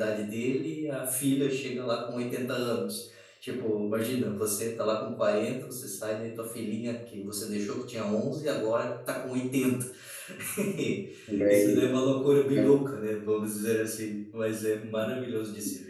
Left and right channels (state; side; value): identical; both; correlation 1.00